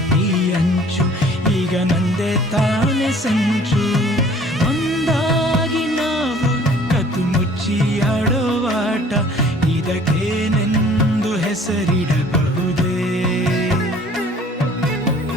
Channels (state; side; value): normal; both; correlation 0.53